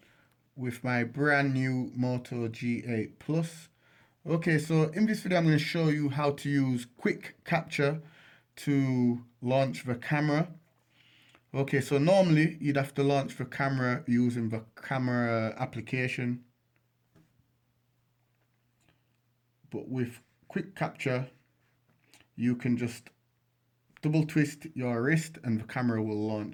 with my brand new Moto G8 Plus. Okay, so in this video I'm going to show you how to use quick capture to launch the camera. Okay, so normally you'd have to launch the camera using the camera application, but with quick capture you can just double twist your wrist and the camera will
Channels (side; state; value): both; identical; correlation 1.00